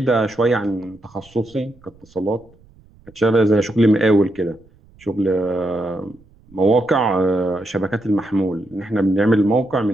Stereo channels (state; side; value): noise; right; rumble, 28 dB below the sound